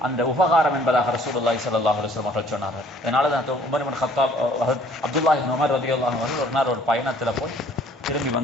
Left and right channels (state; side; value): normal; both; correlation 0.57